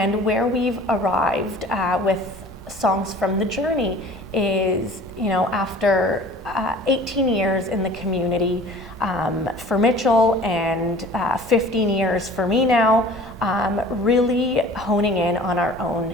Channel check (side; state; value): both; normal; correlation 0.46